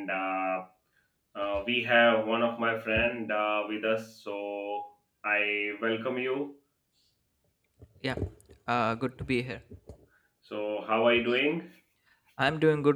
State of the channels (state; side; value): identical; both; correlation 1.00